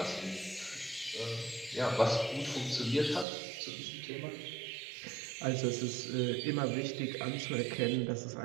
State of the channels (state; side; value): drops out; left; at 3.2 s